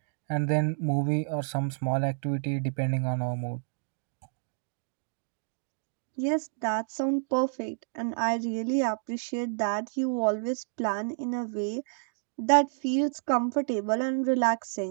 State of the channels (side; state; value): left; silent; digital silence